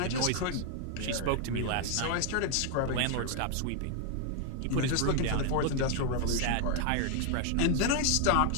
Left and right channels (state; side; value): different; both; correlation 0.00